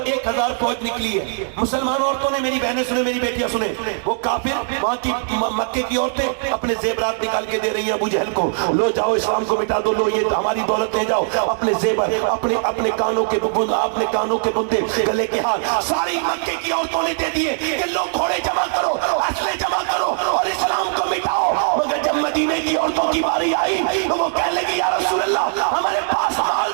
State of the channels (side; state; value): left; silent; digital silence